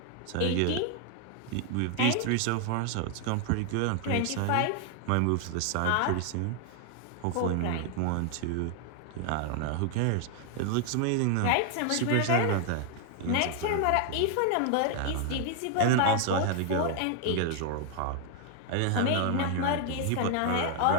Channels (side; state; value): both; different; correlation 0.00